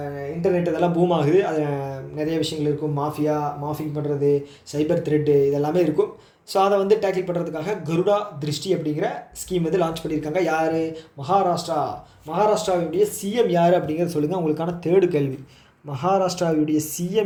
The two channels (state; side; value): identical; both; correlation 1.00